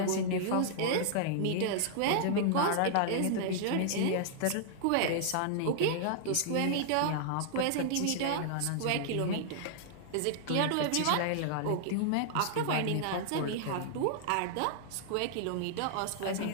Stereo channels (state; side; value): different; both; correlation -0.01